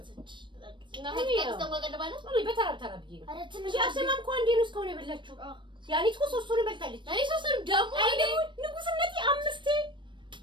እና ከዚህ ተንጓቀደባለ ወይ በተራ ብዬ ነው አረ ትንሽ እንጂ አሰማም እኮ አንዴ ነው እስካሁን የበላችሁ ያኔት እኮ ሶስቱን በልታለች እኔ ሶስቱንም ደግሞ አይኔ ንጉስነቴ አምስቴ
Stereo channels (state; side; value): late; left; 0.23 ms